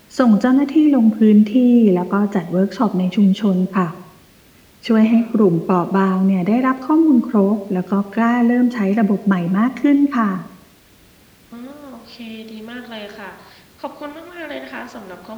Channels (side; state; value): both; identical; correlation 1.00